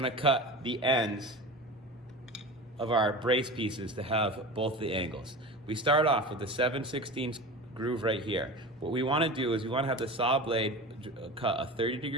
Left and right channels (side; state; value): both; normal; correlation 0.31